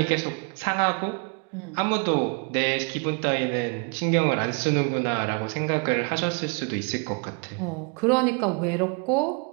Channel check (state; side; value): quieter; left; 35.7 dB